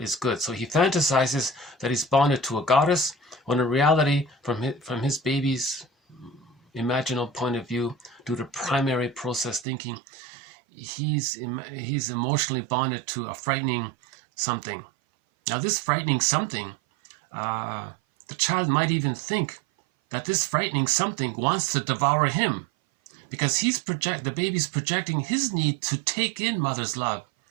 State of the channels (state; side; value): drops out; left; at 9.7 s